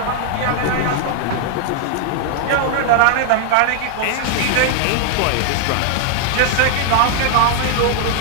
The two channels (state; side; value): different; both; correlation 0.00